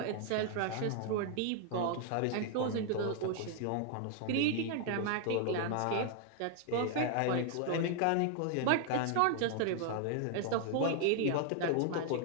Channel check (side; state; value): both; different; correlation 0.00